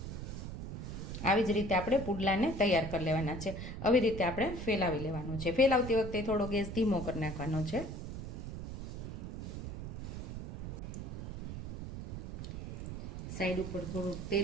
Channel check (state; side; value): noise; right; rumble, 7 dB below the sound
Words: આવી જ રીતે આપણે પુડલાને તૈયાર કરી લેવાના છે. આવી રીતે આપણે ફેલાવી લેવાનું છે. ફેલાવતી વખતે થોડો ગેસ ધીમો કરી નાખવાનો છે. સાઈડ ઉપર થોડું